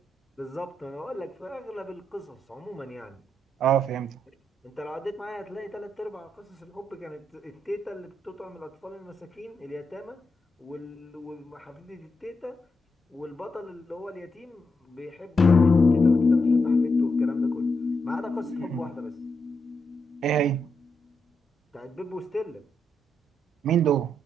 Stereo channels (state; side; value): normal; both; correlation 0.83